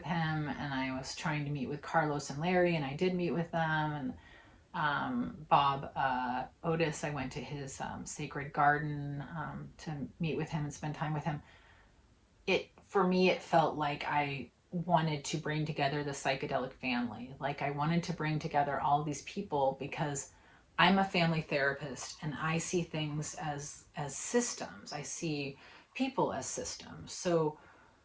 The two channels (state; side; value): identical; both; correlation 1.00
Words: him, and I was trying to meet with Carlos and Larry, and I did meet with them, and Bob Otis, I went to his sacred garden to meet with him and spend time with him. For me, it felt like I wanted to bring together the psychedelic family. Like I wanted to bring together all of these people, because I'm a family therapist, and I see things as systems. I see people as systems. So